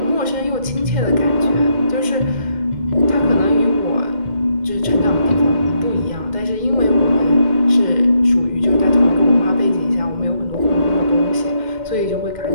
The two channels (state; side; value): late; left; 2.1 ms